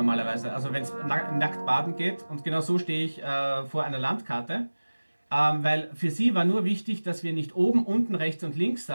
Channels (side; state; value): both; inverted; correlation -1.00